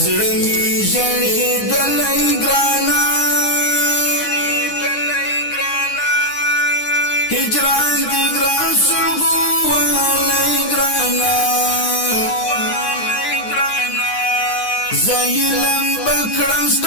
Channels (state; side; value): late; right; 9.7 ms